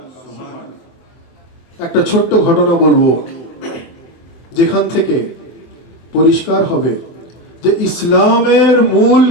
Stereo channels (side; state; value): right; late; 24 ms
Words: একটা ছোট্ট ঘটনা বলবো, যেখান থেকে পরিষ্কার হবে যে ইসলামের মূল